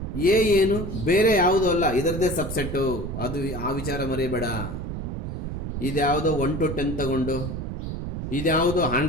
ಎ ಏನು? ಬೇರೆ ಯಾವುದೂ ಅಲ್ಲ, ಇದರದೇ ಸಬ್ಸೆಟ್ಟು. ಅದು ಆ ವಿಚಾರ ಮರಿಬೇಡ. ಇದ್ಯಾವುದೋ 1 to 10 ತಗೊಂಡು, ಇದ್ಯಾವುದೋ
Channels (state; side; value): noise; right; rumble, 5 dB below the sound